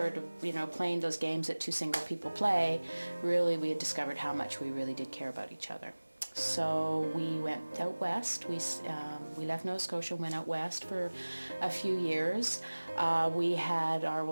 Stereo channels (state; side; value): inverted; both; correlation -1.00